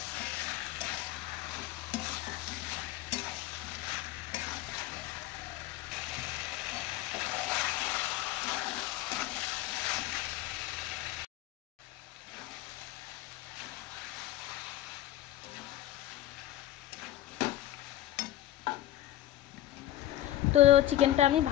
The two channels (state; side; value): quieter; right; 14.1 dB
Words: তো চিকেনটা আমি